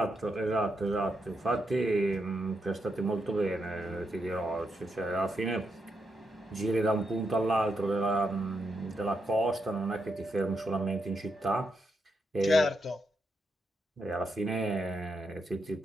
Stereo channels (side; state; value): both; normal; correlation 0.82